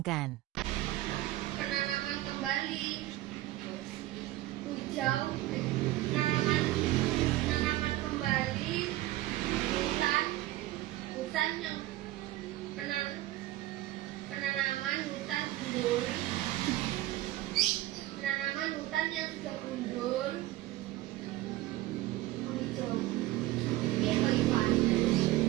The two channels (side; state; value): left; quieter; 16.6 dB